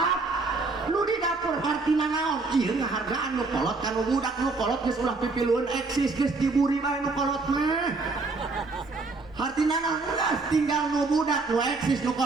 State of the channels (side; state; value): left; quieter; 3.8 dB